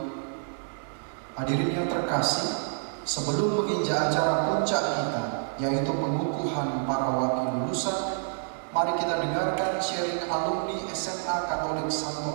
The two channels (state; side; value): silent; left; 59 dB below the other